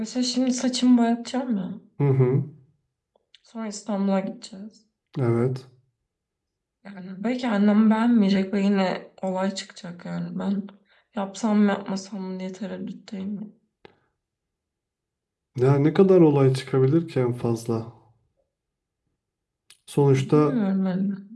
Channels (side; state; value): both; identical; correlation 1.00